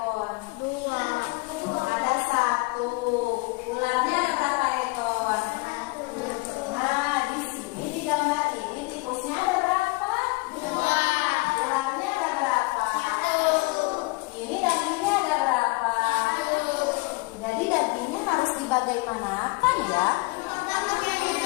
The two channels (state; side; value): quieter; right; 25.6 dB